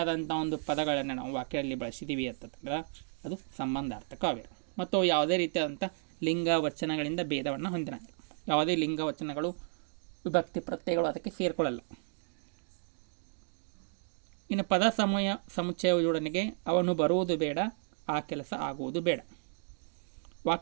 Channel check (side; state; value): left; silent; digital silence